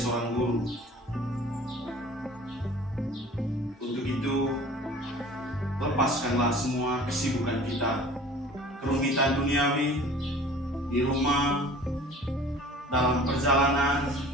guru. Untuk itu, lepaskanlah semua kesibukan kita, kerumitan duniawi, di rumah, dalam perjalanan,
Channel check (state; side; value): normal; both; correlation 0.45